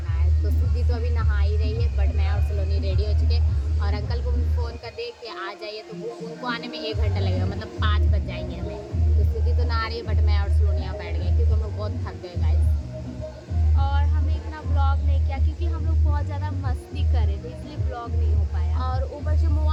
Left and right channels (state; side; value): identical; both; correlation 1.00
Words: है। तो सुधी तो अभी नहा ही रही है, बट मैं और सलोनी रेडी हो चुके हैं। और अंकल को भी फ़ोन कर दे कि आ जाइए, तो वो उनको आने में 1 घंटा लगेगा, मतलब 5 बज जाएंगे हमें। तो सुधी तो नहा रही है, बट मैं और सलोनी यहाँ बैठ गए क्योंकि हम लोग बहुत थक गए गाइस। और हमने इतना ब्लॉग नहीं किया क्योंकि हम लोग बहुत ज़्यादा मस्ती कर रहे थे, इसलिए ब्लॉग नहीं हो पाया। और ऊपर से